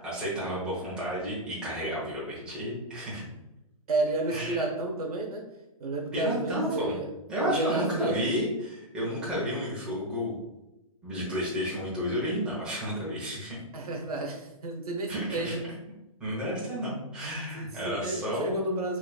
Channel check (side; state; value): both; normal; correlation -0.05